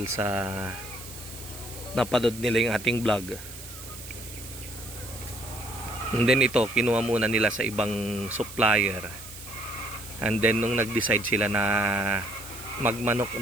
sa napanood nila yung ating vlog. And then ito, kinuha muna nila sa ibang supplier. And then nung nag-decide sila na magmanok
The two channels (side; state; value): right; noise; hiss, 14 dB below the sound